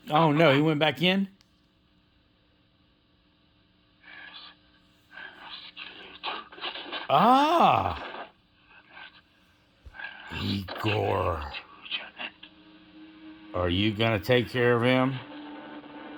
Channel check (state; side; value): identical; both; correlation 1.00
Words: Oh no, he went back in? Ah! Igor. Are you gonna take care of him?